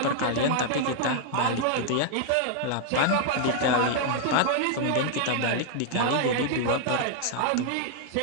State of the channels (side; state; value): both; different; correlation 0.00